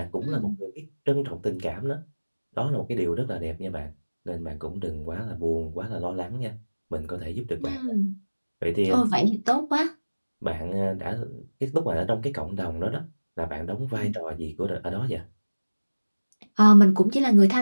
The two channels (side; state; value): both; inverted; correlation -1.00